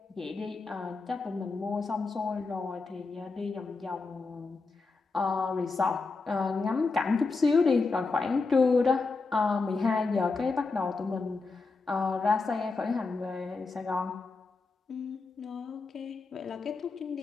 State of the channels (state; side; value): quieter; right; 4.0 dB